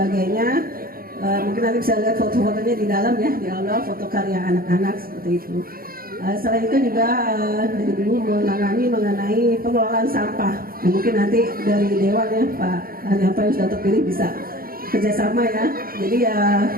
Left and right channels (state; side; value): late; left; 0.42 ms